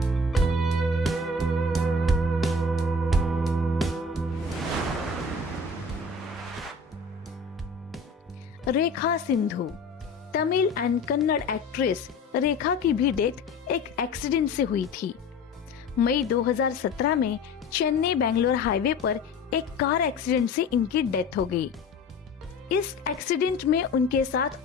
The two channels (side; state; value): right; quieter; 3.5 dB